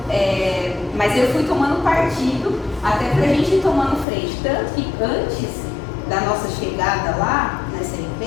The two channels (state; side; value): drops out; right; at 4.0 s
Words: Mas eu fui tomando partido até pra gente ir tomando frente. Tanto que antes da nossa chegada lá, nessa